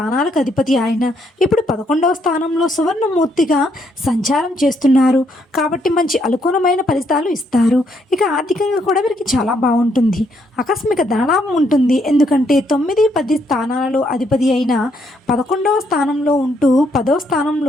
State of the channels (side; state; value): both; normal; correlation 0.73